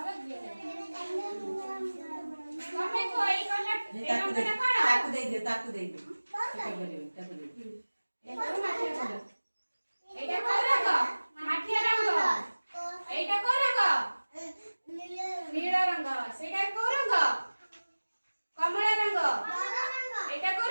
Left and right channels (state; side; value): inverted; both; correlation -1.00